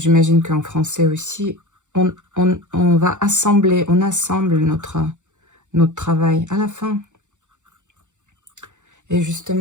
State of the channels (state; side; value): late; left; 0.85 ms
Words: qu'en français aussi, on va assembler, on assemble notre travail à la fin. Et